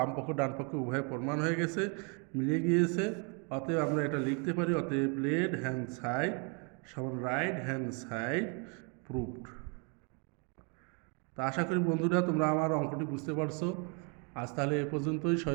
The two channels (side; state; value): left; quieter; 35.7 dB